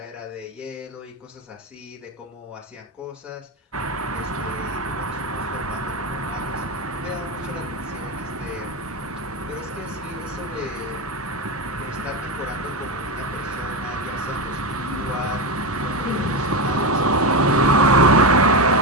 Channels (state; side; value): normal; both; correlation 0.13